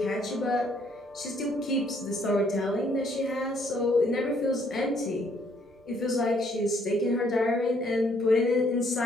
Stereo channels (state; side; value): normal; both; correlation 0.67